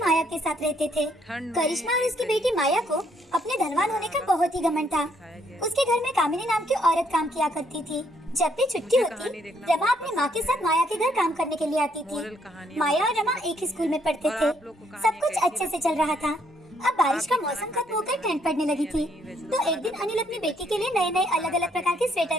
के साथ रहते थे। करिश्मा और उसकी बेटी माया को अपने धनवान होने का बहुत ही घमंड था। उसके घर में कामिनी नाम की औरत काम किया करती थी। जब भी छुट्टी होती, रमा अपनी माँ के साथ माया के घर काम करने के लिए आती थी। माया और रमा एक ही स्कूल में पढ़ते थे। सब कुछ अच्छे से चल रहा था। अब बारिश का मौसम खत्म होकर ठंड पड़ने लगी थी, तो एक दिन अनिल अपनी बेटी के लिए नए नए अलग अलग प्रकार के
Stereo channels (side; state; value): both; normal; correlation 0.70